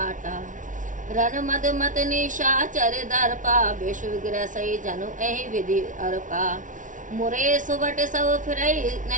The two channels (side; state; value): left; late; 0.37 ms